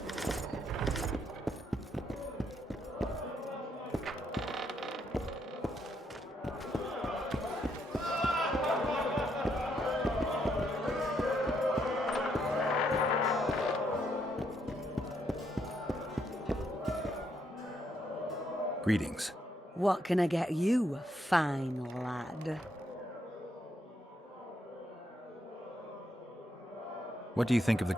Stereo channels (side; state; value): both; normal; correlation 0.76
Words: Greetings. What can I get you, fine lad? What do you think of the